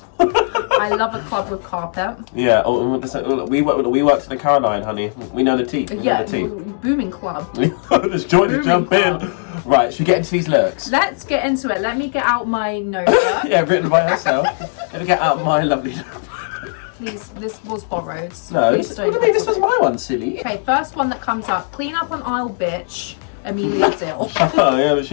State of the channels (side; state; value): right; silent; digital silence